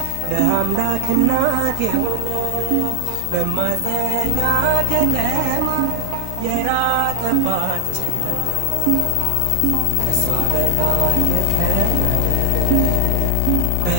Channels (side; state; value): both; different; correlation 0.00